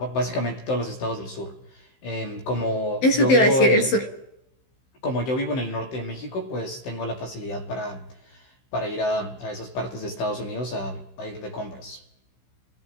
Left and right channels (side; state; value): right; late; 15 ms